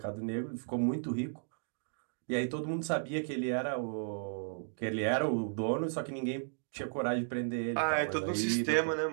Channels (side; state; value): left; silent; digital silence